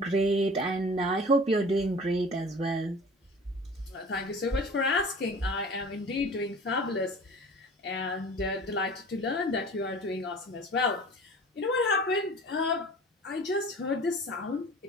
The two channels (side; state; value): both; normal; correlation 0.42